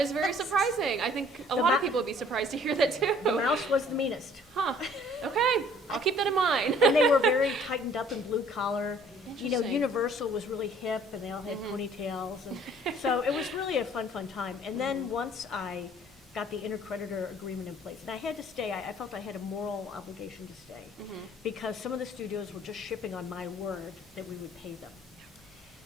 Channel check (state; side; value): normal; both; correlation 0.56